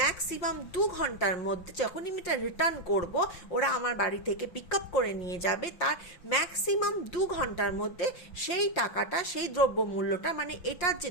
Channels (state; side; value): late; right; 5.7 ms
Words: ম্যাক্সিমাম 2 ঘন্টার মধ্যে, যখনই আমি এটা রিটার্ন করব, ওরা আমার বাড়ি থেকে পিক আপ করে নিয়ে যাবে। তার ম্যাক্সিমাম 2 ঘন্টার মধ্যে সেই টাকাটা, সেই দ্রব্যমূল্যটা, মানে এটার যে